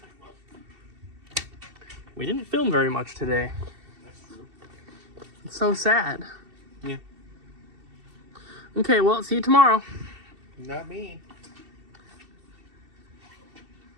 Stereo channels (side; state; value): left; late; 2.7 ms